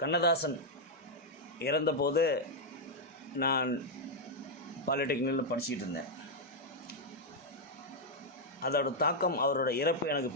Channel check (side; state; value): both; normal; correlation -0.02